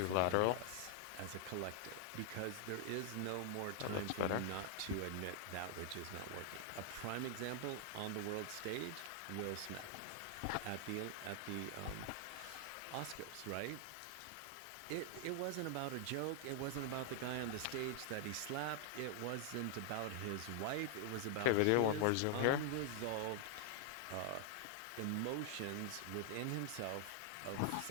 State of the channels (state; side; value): different; both; correlation 0.00